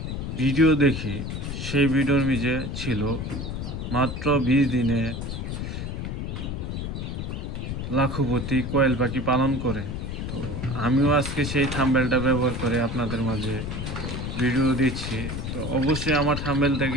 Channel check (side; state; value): left; noise; rumble, 4 dB below the sound